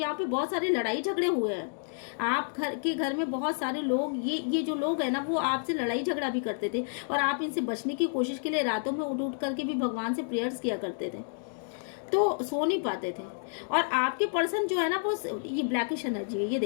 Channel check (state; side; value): silent; right; digital silence